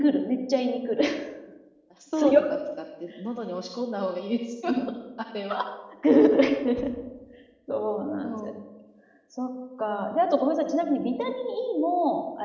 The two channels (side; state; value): both; identical; correlation 1.00